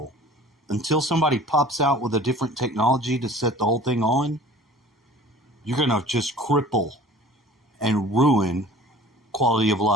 Until somebody pops out with a different technology to set the whole thing on, you're going to just cripple and ruin quality of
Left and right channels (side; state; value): both; normal; correlation 0.45